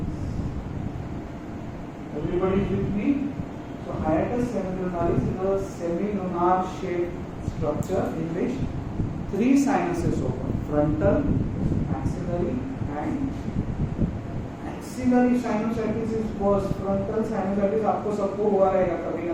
Everybody with me? So hiatus semilunaris is a semilunar shaped structure in which three sinuses open: frontal, maxillary, and maxillary sinusitis is worse. Frontal sinusitis आपको सबको हुआ रहेगा कभी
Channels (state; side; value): identical; both; correlation 1.00